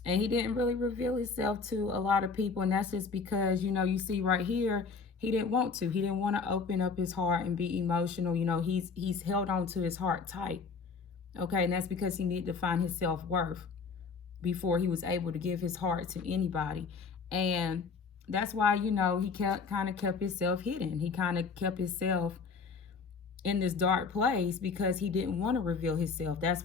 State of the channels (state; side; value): quieter; right; 5.0 dB